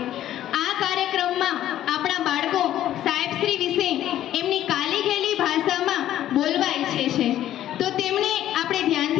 આ કાર્યક્રમમાં આપણા બાળકો સાહેબશ્રી વિશે એમની કાલી ગયેલી ભાષામાં બોલવા ઈચ્છે છે, તો તેમણે આપણે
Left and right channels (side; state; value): right; quieter; 12.4 dB